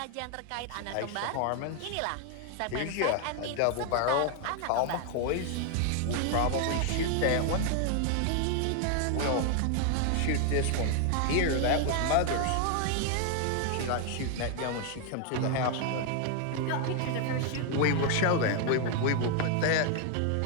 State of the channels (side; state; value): both; different; correlation 0.00